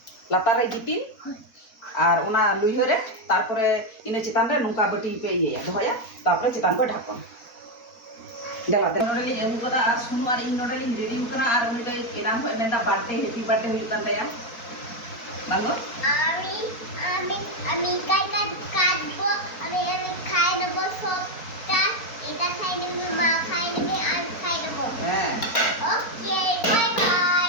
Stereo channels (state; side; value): late; right; 4.4 ms